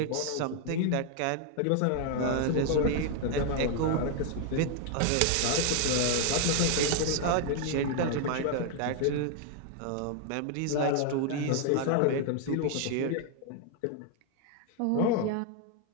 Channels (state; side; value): different; both; correlation 0.00